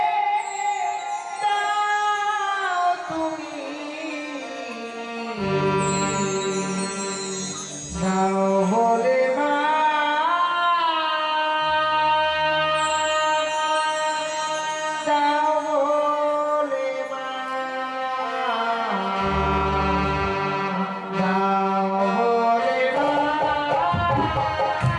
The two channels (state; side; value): identical; both; correlation 1.00